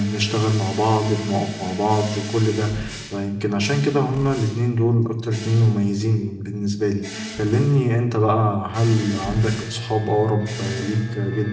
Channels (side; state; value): both; identical; correlation 1.00